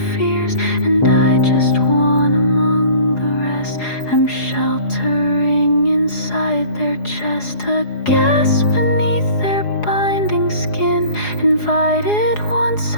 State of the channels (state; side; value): late; right; 4.8 ms